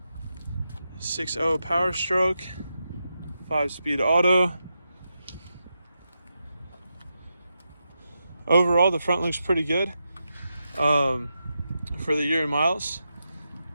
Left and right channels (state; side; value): inverted; both; correlation -0.87